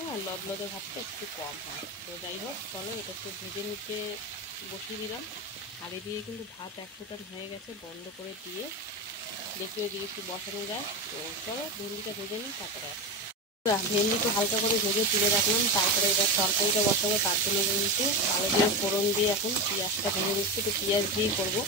আর লদলদে ভাতটা একটু কম হয়। তো যাই হোক চলো, এটা একটু ভেজে নিতে বসিয়ে দিলাম। আর এদিকে কিন্তু ভাত এক ফোটান হয়ে গেছে, বন্ধ করে দিয়ে দেখি ওইদিকে একটু বসানো যায়। তো চলো ভেন্ডিটা ভেজে নিই, তারপরে ভেন্ডিটা হালকা করে ভেজে তুলে রাখলাম। তারপরে এবার তরকারিটা বসাবো, তার জন্য কিন্তু আলু দিয়ে ফোড়ন দিয়ে এখন পেঁয়াজটা ভেজে দিচ্ছি। তো পেঁয়াজ দিয়েই করবো,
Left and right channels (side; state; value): both; normal; correlation 0.17